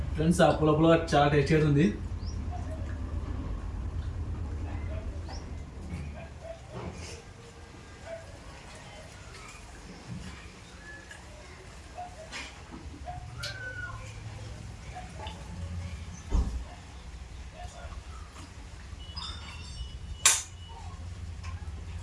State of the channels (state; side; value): identical; both; correlation 1.00